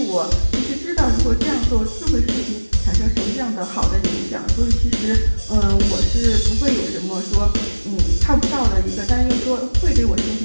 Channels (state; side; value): inverted; both; correlation -1.00